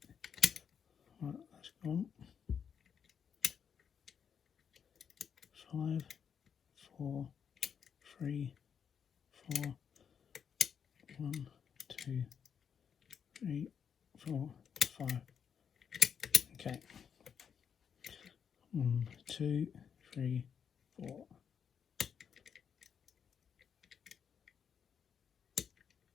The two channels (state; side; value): quieter; right; 7.4 dB